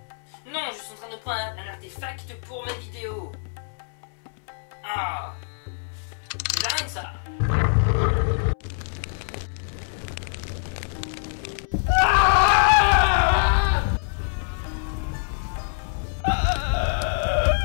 Non, je suis en train de prendre un artefact pour ma vidéo. Ah, c'est dingue ça.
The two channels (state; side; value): silent; right; 62 dB below the other